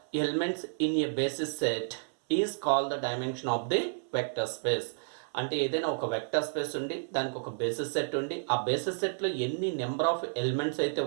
elements in A basis set is called the dimension of the vector space. అంటే ఏదైనా ఒక వెక్టర్ స్పేస్ ఉండి దానికి ఒక బేసిస్ సెట్ ఉండి ఆ బేసిస్ సెట్లో ఎన్ని నెంబర్ ఆఫ్ ఎలిమెంట్స్ అయితే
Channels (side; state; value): left; silent; 57 dB below the other